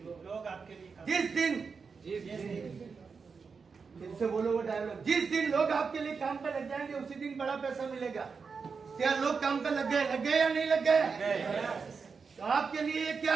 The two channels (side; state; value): left; quieter; 5.2 dB